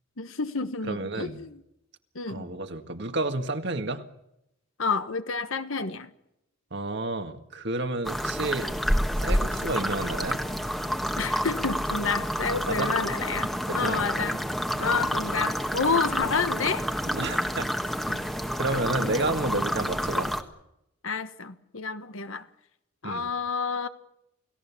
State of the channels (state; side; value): normal; both; correlation 0.43